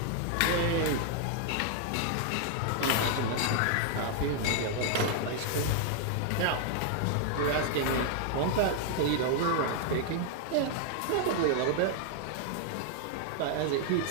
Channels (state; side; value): different; both; correlation 0.00